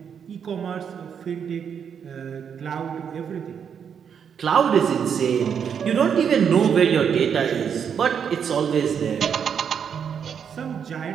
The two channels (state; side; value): quieter; left; 7.5 dB